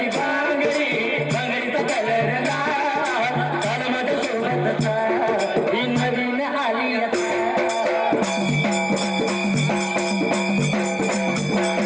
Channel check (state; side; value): identical; both; correlation 1.00